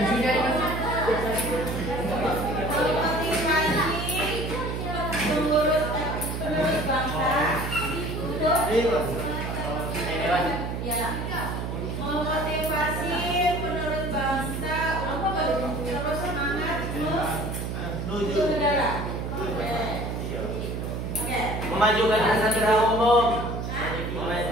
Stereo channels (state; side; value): noise; right; hum, 4 dB below the sound